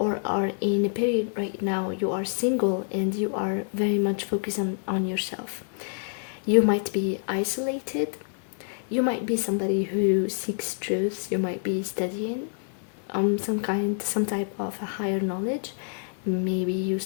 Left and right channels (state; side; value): silent; right; 58 dB below the other